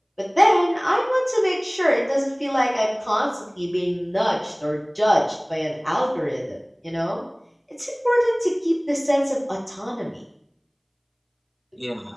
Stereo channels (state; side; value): identical; both; correlation 1.00